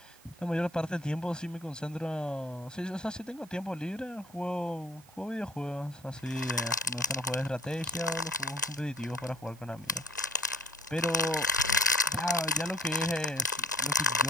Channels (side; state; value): both; normal; correlation 0.55